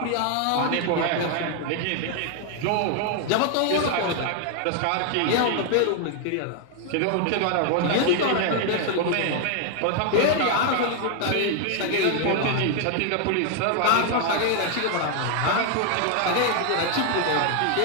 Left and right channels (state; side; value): different; both; correlation 0.00